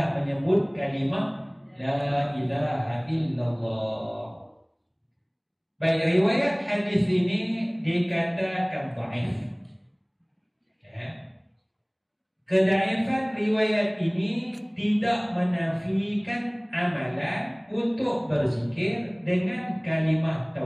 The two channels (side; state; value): both; identical; correlation 1.00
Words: menyebut kalimah la ilaha illallah. Baik, riwayat hadis ini dikatakan dhaif. Kedaifan riwayat ini tidak menafikan amalan untuk berzikir dengan kalimah